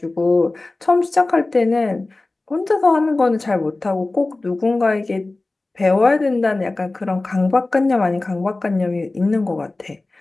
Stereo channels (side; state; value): right; quieter; 3.1 dB